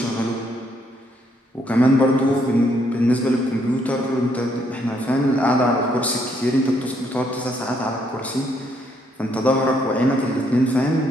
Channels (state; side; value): normal; both; correlation 0.71